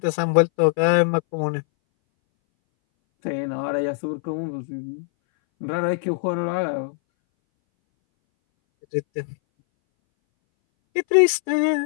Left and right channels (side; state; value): right; silent; 61 dB below the other